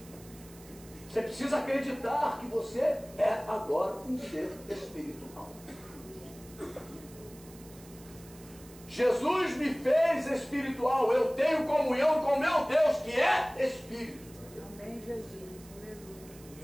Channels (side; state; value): right; noise; hiss, 21 dB below the sound